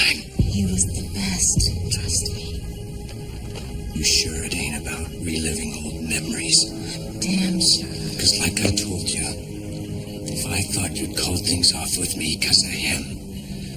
He was the best. Trust me. You sure it ain't about reliving old memories? Damn sure. Because like I told you, if I thought you'd call things off with me because of him,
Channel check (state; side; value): identical; both; correlation 1.00